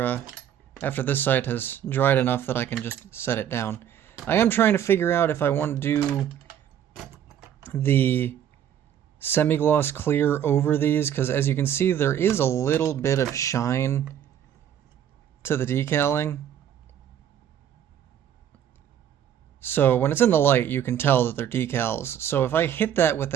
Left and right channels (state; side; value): quieter; left; 9.8 dB